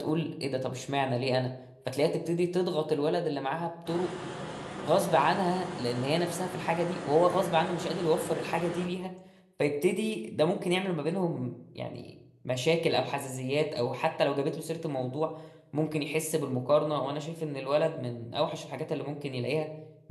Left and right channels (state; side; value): identical; both; correlation 1.00